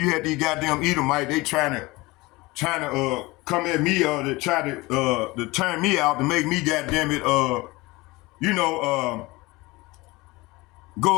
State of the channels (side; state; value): right; quieter; 22.2 dB